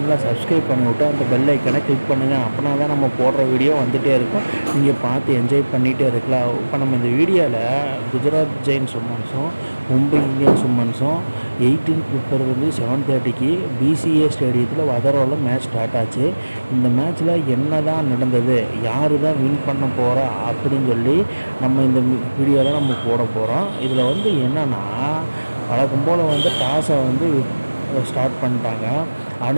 சப்ஸ்கிரைப் பண்ணிவிட்டு அந்த பெல் ஐக்கனை கிளிக் பண்ணுங்கள். அப்படின்னா தான் நம்ம போடுற வீடியோ வந்துகிட்டே இருக்கும், நீங்கள் பார்த்து என்ஜாய் பண்ணிகிட்டே இருக்கலாம். இப்போ நம்ம இந்த வீடியோவில் குஜராத் ஜெயின்ஸ் உமன்ஸும் மும்பை இந்தியன்ஸ் உமன்ஸும் 18 பிப்ரவரி 7:30 பிசிஏ ஸ்டேடியத்தில் வதரோவில் மேட்ச் ஸ்டார்ட் ஆச்சு. இந்த மேட்ச்சில் என்ன தான் நடந்தது, யார் தான் வின் பண்ண போகிறா அப்படின்னு சொல்லி நம்ம இந்த வீடியோவில் நம்ம போட போகிறோம். இதில் என்னென்னா, வழக்கம் போல் டாஸை ஸ்டார்ட் பண்ணிட்டாங்க.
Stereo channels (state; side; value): inverted; both; correlation -1.00